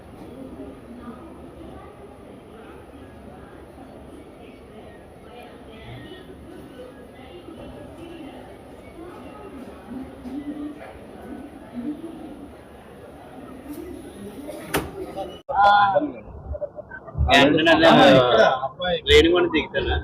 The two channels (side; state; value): both; identical; correlation 1.00